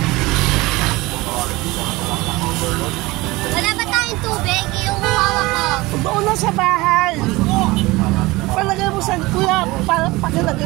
Wala ba tayong tubig? Yung hawak ko. Doon na sa bahay. Palagay mo sa kuya,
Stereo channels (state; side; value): quieter; left; 21.2 dB